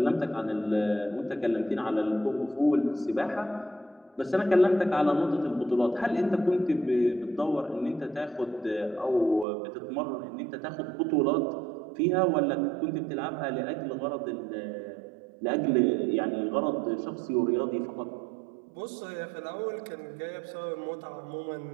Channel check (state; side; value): drops out; left; at 9.5 s